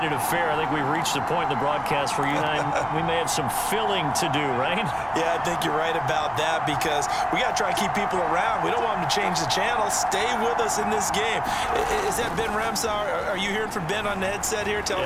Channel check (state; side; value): identical; both; correlation 1.00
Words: affair, I think we've reached the point in the broadcast where you and I, we may have some filling to do, right? Yeah, I think you're right about that, because we got to try and keep people around. We don't want them to change the channel. Stay with us in this game. Is that Ben Remsauer? Are you hearing from Ben on the headset here? Tell